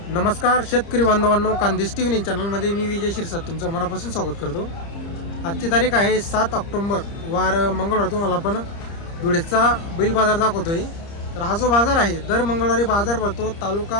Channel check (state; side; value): late; right; 30 ms